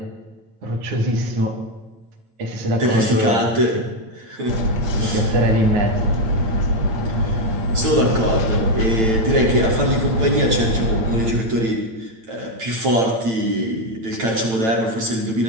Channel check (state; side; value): late; left; 9.0 ms